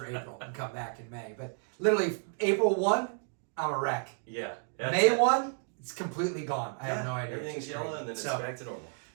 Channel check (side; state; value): left; silent; 57 dB below the other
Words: April and come back in May. But literally April 1, I'm a wreck. Yeah. May 1, it's completely gone. I have no idea. Everything's yellow and then it's back to normal.